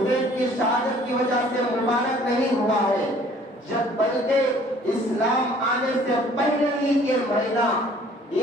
کی شہادت کی وجہ سے مبارک نہیں ہوا ہے، جب بلکہ اسلام آنے سے پہلے ہی یہ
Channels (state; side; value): normal; both; correlation 0.55